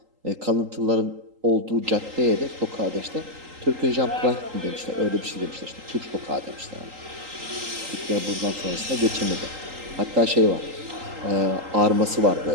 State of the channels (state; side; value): late; left; 3.8 ms